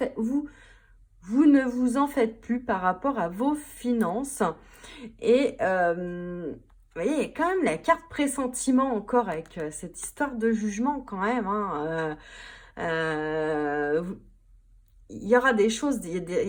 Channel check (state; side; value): identical; both; correlation 1.00